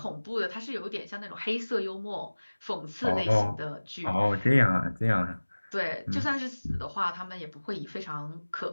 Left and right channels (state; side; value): inverted; both; correlation -1.00